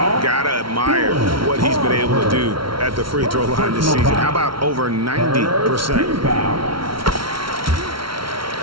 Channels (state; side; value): late; left; 0.74 ms